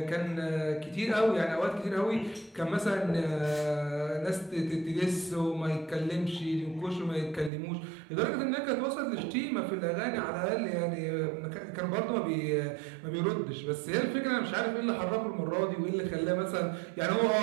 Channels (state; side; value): drops out; left; at 7.5 s